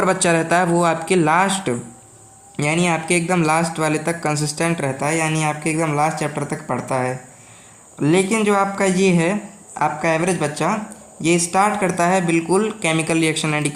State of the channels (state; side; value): identical; both; correlation 1.00